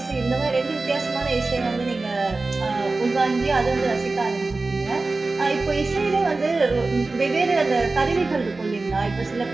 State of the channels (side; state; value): left; quieter; 3.4 dB